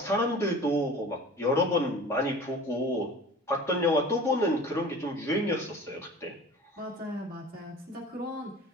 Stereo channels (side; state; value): both; normal; correlation 0.41